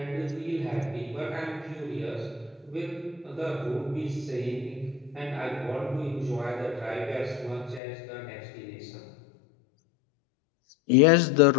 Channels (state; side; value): drops out; right; at 7.8 s